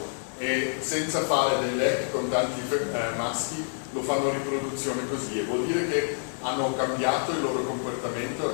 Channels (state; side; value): silent; right; digital silence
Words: e senza fare dei letti con tanti maschi, lo fanno riproduzione così, e vuol dire che hanno cambiato il loro comportamento,